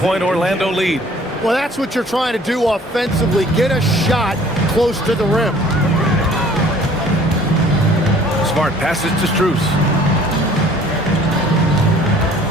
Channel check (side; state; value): both; normal; correlation 0.53